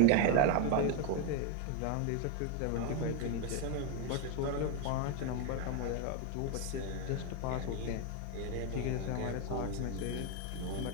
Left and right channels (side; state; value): both; different; correlation 0.02